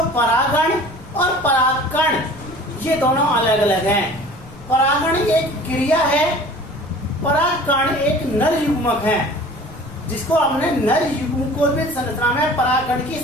परागण और परागकण ये दोनों अलग अलग हैं। परागण एक क्रिया है, परागकण एक नर युग्मक है, जिसको हमने नर युग्मकोद्भिद संरचना में परागकण की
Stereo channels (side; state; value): left; noise; rumble, 19 dB below the sound